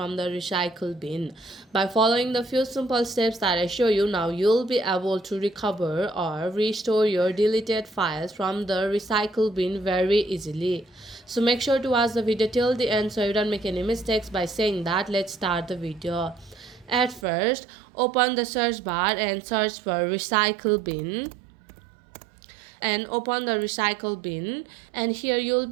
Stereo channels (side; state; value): left; drops out; at 17.2 s